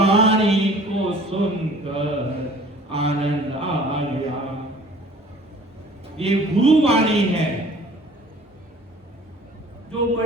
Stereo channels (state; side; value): normal; both; correlation 0.50